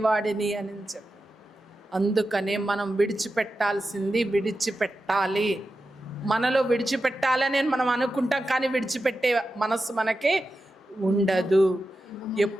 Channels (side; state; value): both; normal; correlation 0.91